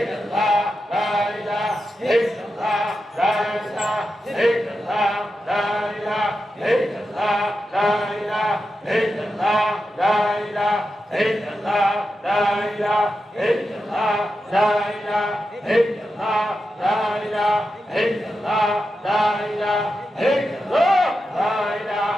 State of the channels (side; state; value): both; normal; correlation 0.89